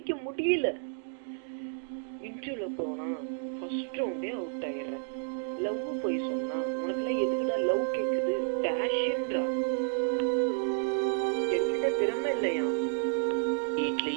முடியல. இன்டர்வியூல போனா ஃபர்ஸ்ட் ரவுண்டே அவுட் ஆயிடுறேன். லவ் போய் சொன்னா உனக்குலாம் எதுக்குடா லவ் கேக்குது டேஷ்ன்றா. என்கிட்ட திறமை இல்லையா?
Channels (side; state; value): left; silent; digital silence